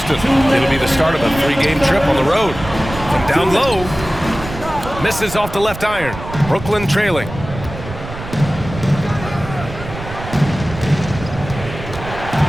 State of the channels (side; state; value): right; noise; rumble, 11 dB below the sound